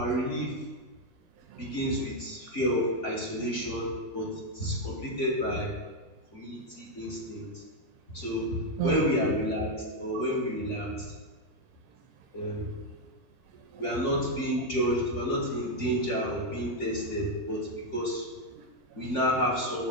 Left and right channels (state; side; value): late; right; 3.5 ms